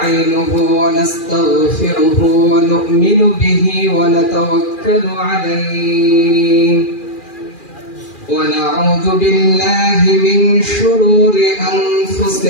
ونستغفره ونؤمن به ونتوكل عليه ونعوذ بالله من شرور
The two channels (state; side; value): late; right; 2.4 ms